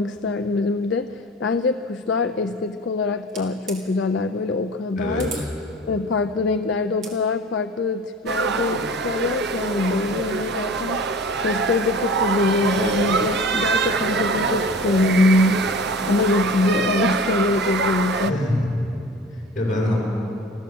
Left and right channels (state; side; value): normal; both; correlation 0.39